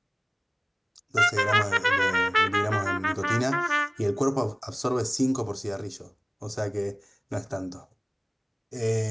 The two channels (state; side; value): identical; both; correlation 1.00